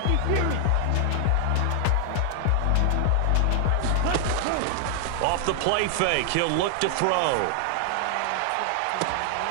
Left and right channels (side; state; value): both; different; correlation 0.00